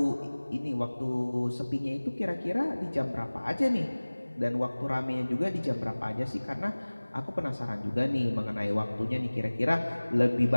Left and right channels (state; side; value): inverted; both; correlation -1.00